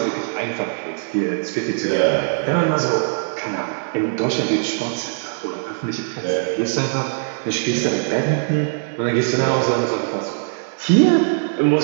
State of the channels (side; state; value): left; silent; digital silence